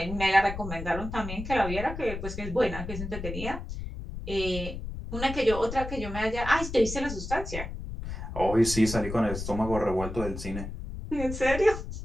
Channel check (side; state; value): left; noise; rumble, 7 dB below the sound